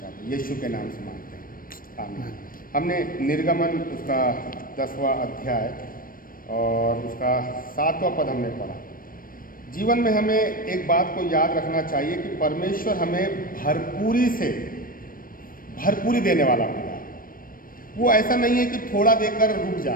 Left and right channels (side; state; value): right; late; 0.41 ms